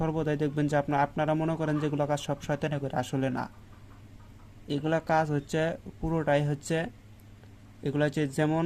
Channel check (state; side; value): identical; both; correlation 1.00